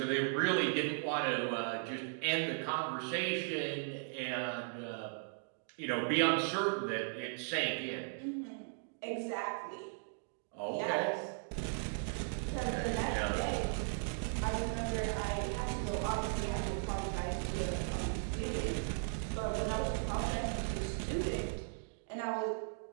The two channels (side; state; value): left; silent; digital silence